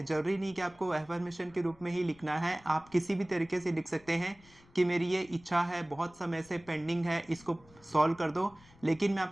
जरूरी नहीं कि आपको एफर्मेशन के रूप में ही लिखना है, आप किसी भी तरीके से लिख सकते हैं कि मेरी ये इच्छा है, बहुत समय से पेंडिंग है, इसको सॉल्व कर दो। लेकिन मैं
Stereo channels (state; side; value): noise; left; rumble, 26 dB below the sound